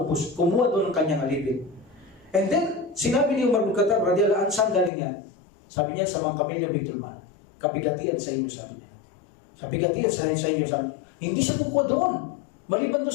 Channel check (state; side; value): drops out; right; at 4.9 s